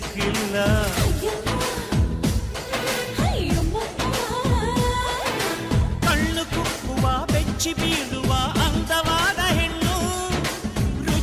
ಕಣ್ಣು ಕುಕ್ಕುವ ಬೆಚ್ಚಿ ಬೀಳುವ ಅಂದವಾದ ಹೆಣ್ಣು,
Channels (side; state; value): both; identical; correlation 1.00